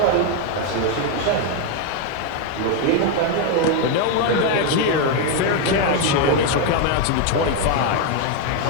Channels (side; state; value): both; different; correlation 0.01